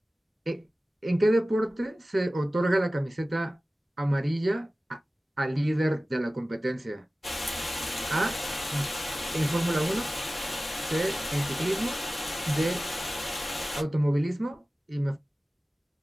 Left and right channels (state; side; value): normal; both; correlation 0.96